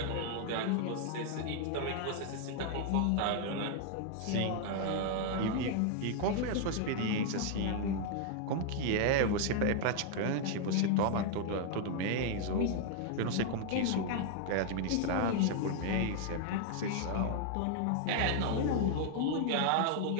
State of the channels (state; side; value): different; both; correlation 0.00